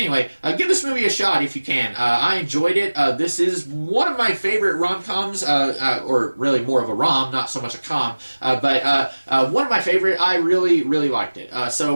give this movie a shot if you can. I enjoyed it. This is one of my favorite rom-coms, or really more of a rom, not so much a com. But one of my favorite. I really, really liked it. So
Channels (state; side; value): inverted; both; correlation -1.00